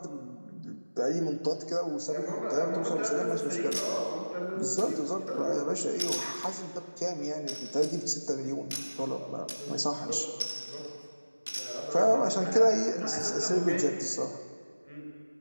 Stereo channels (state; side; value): inverted; both; correlation -1.00